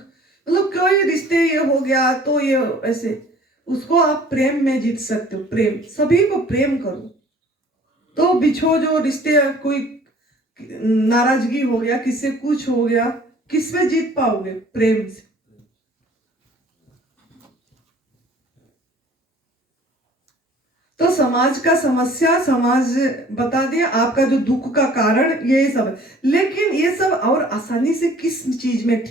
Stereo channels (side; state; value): both; normal; correlation 0.52